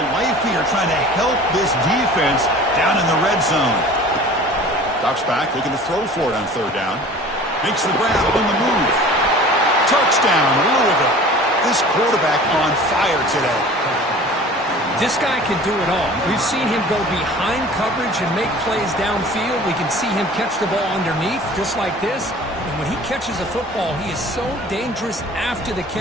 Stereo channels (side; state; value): both; normal; correlation 0.44